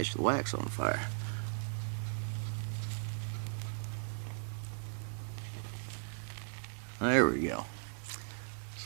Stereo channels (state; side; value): silent; left; digital silence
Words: the wax on fire. There we go.